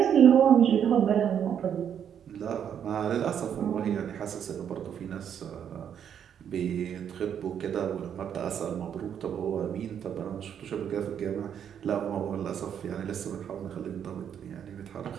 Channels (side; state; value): left; quieter; 8.7 dB